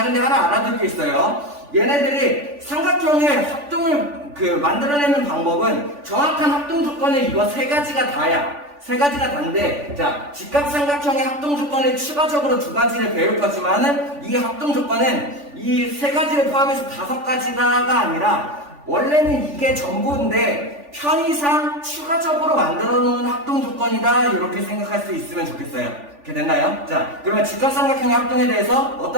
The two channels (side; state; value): left; late; 3.4 ms